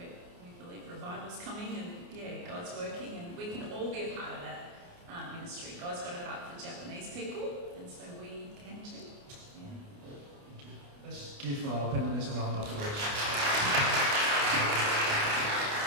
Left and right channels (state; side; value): late; left; 29 ms